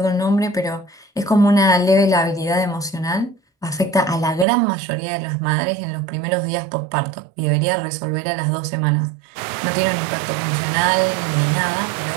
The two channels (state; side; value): drops out; left; at 4.5 s